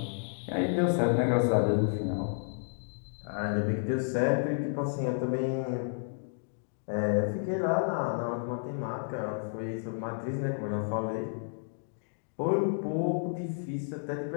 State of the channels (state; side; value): silent; right; digital silence